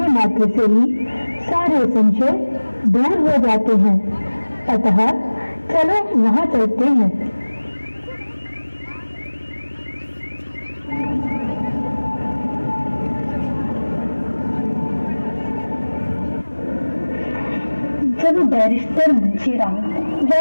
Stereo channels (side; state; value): both; inverted; correlation -1.00